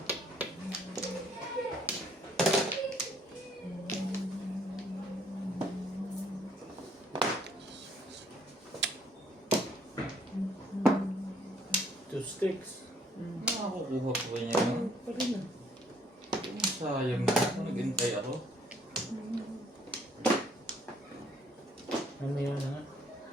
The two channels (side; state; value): both; normal; correlation 0.63